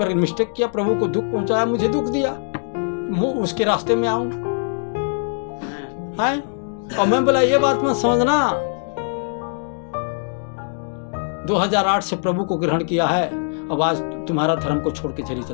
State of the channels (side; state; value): right; silent; digital silence